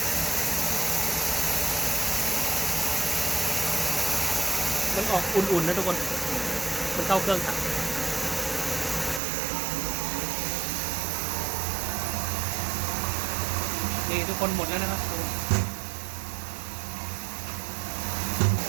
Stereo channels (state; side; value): drops out; left; at 9.2 s